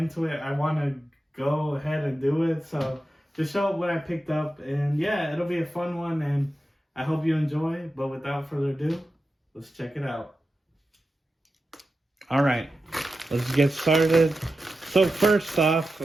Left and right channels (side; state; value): both; normal; correlation 0.91